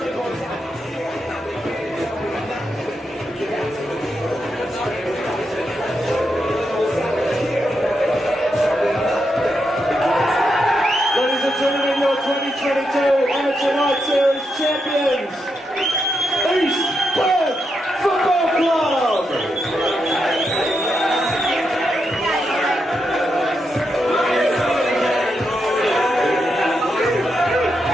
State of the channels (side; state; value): both; normal; correlation 0.84